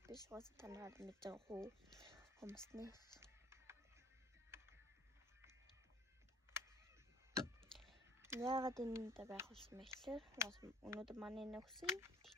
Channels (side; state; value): both; normal; correlation 0.50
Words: биш уус танаар мэдж байгаа хөө хүмүүсний. Яагаад энэ дэ байх болсон бэ гэхээр өнөөдөр манай нөхсөн